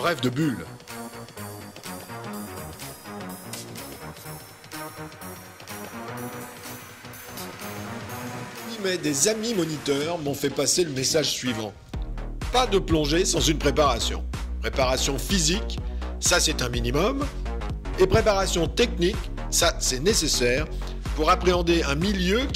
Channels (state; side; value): identical; both; correlation 1.00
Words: de bulles. Mais des amis moniteurs m'ont fait passer le message suivant. Pas de plongée sans une préparation. Préparation physique, ça c'est un minimum. Et préparation technique, ça c'est nécessaire pour appréhender un milieu